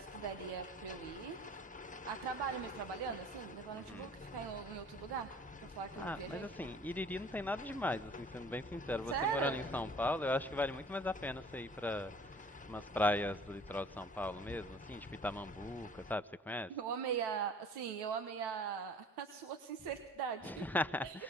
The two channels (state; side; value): normal; both; correlation 0.49